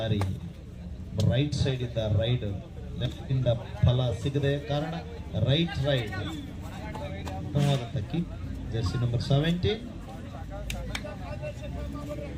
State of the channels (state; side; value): identical; both; correlation 1.00